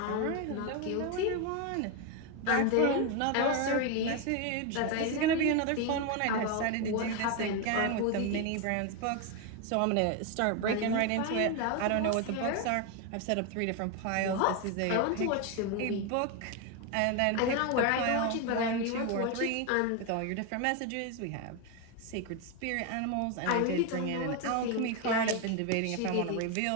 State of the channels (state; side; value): different; both; correlation 0.02